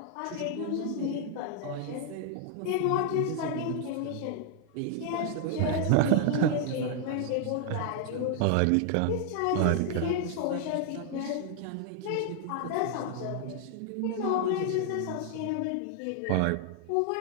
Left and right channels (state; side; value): different; both; correlation 0.00